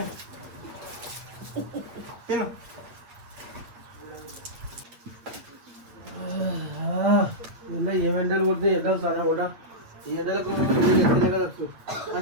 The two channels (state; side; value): late; left; 8.5 ms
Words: తిను ఇలా ఏ ఎండలు కొడుతున్నాయి ఎండలు చాలా కూడా ఈ ఎండలకు